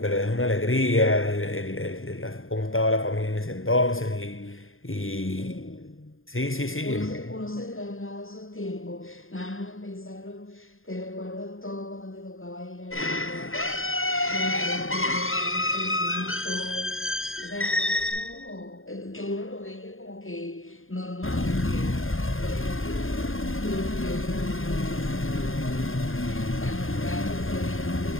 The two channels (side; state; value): right; late; 0.60 ms